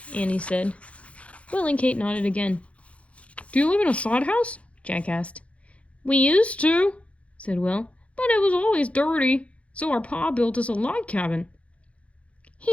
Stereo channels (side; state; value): right; late; 0.063 ms